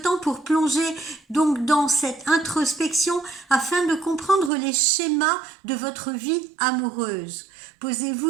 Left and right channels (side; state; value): left; drops out; at 4.5 s